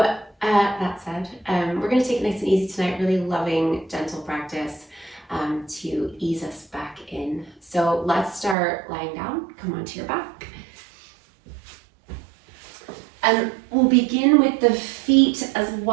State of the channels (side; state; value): left; drops out; at 8.6 s